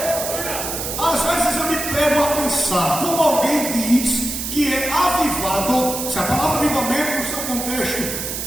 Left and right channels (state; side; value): noise; right; hiss, 5 dB below the sound